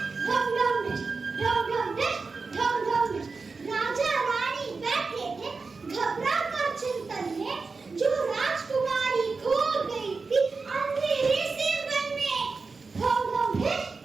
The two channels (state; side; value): quieter; left; 4.3 dB